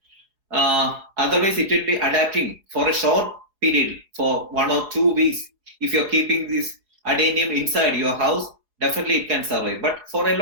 otherwise it will be adapting for a short period for 1 or 2 weeks. If you're keeping this adenium inside your house, definitely it can survive. But for a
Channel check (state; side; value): late; left; 4.8 ms